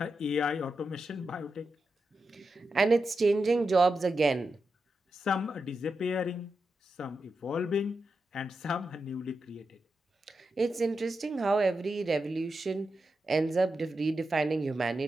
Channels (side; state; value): both; normal; correlation 0.88